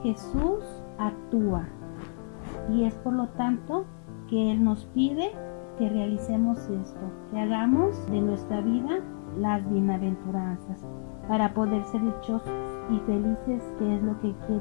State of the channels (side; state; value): right; silent; digital silence